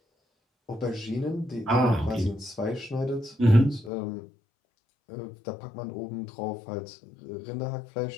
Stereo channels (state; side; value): drops out; right; at 3.9 s